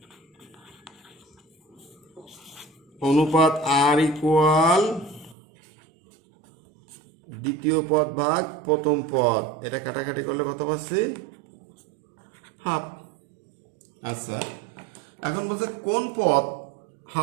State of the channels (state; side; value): drops out; left; at 5.4 s